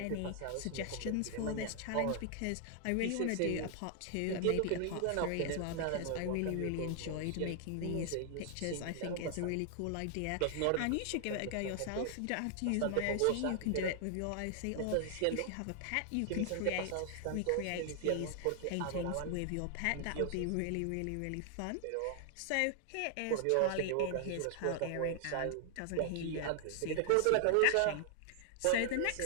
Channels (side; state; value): both; different; correlation 0.00